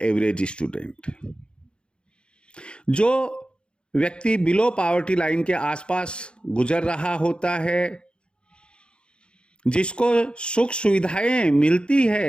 एवरेज स्टूडेंट है। जो व्यक्ति बिलो पॉवर्टी लाइन के आसपास गुजर रहा होता है, जिसको सुख सुविधाएं मिलती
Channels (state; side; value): late; right; 0.054 ms